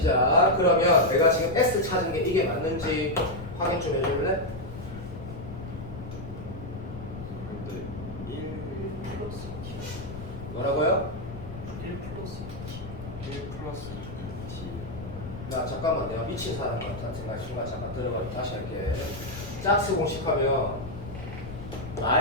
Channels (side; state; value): left; noise; rumble, 11 dB below the sound